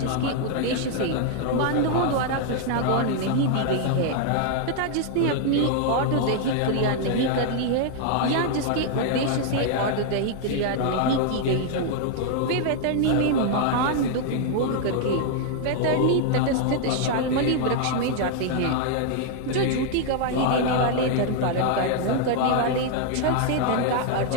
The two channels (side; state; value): both; different; correlation 0.00